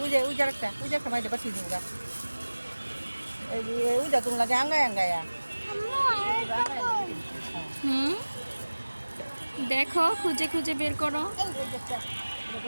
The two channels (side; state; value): both; inverted; correlation -1.00